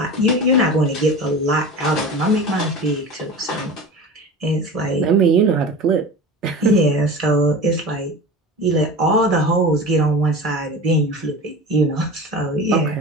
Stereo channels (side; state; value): both; normal; correlation 0.33